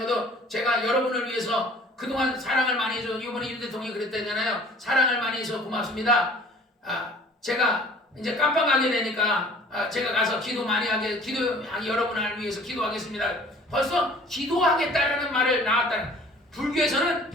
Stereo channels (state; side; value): normal; both; correlation 0.50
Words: 것도 제가 여러분을 위해서 그동안 사랑을 많이 해줘. 이번에 윤 대통령이 그랬다잖아요. 사랑을 많이 해서 고맙습니다. 제가 이제 깜빵 가게 되니까 제가 가서 기도 많이 하게 여러분을 위해서 기도하겠습니다. 벌써 기도하겠다라는 말을 나왔다는. 불교에서는